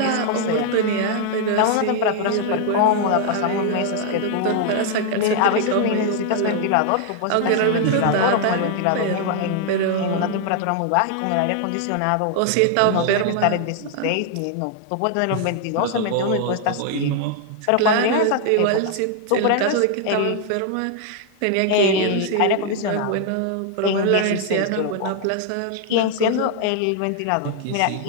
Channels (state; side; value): different; both; correlation 0.00